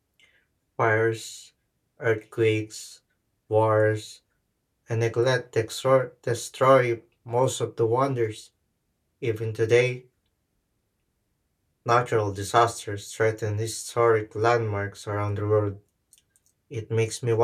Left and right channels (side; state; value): both; identical; correlation 1.00